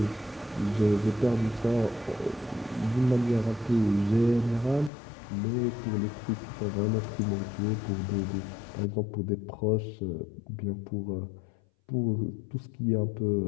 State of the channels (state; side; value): drops out; right; at 4.9 s